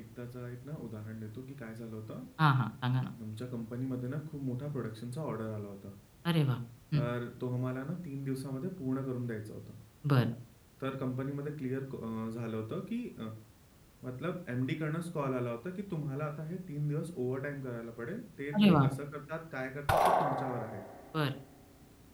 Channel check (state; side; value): identical; both; correlation 1.00